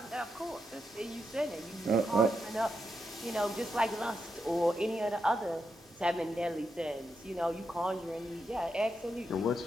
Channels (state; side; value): normal; both; correlation 0.84